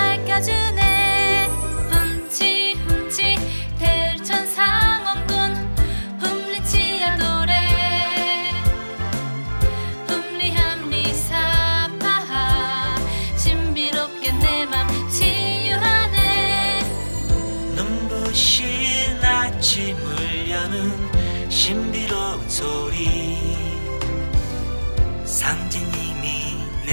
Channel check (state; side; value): inverted; both; correlation -1.00